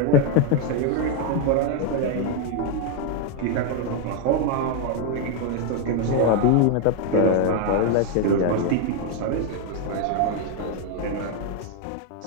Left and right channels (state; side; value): different; both; correlation 0.01